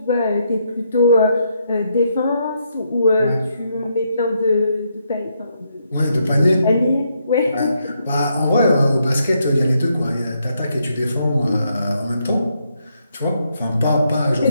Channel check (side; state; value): both; inverted; correlation -0.77